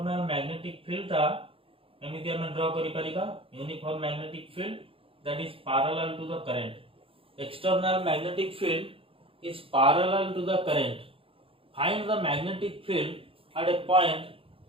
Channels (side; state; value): left; late; 0.27 ms